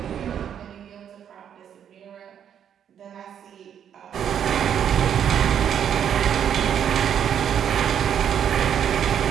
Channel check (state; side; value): quieter; left; 8.9 dB